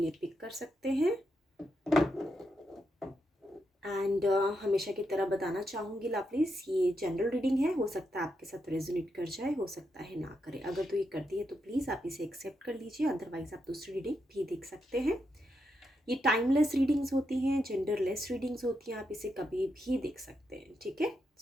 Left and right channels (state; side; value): normal; both; correlation 0.83